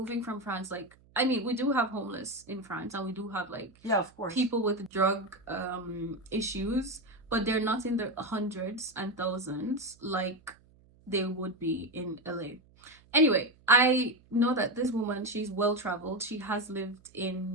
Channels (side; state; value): right; noise; hum, 29 dB below the sound